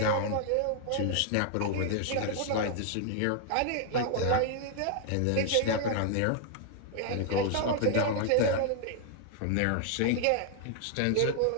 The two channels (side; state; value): both; different; correlation 0.00